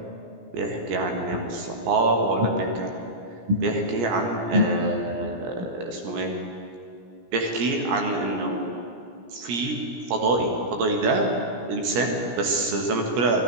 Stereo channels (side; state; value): left; late; 17 ms